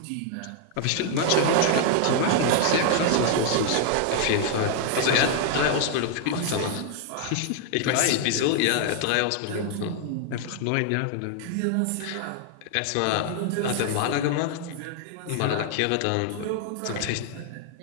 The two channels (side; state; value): both; different; correlation 0.00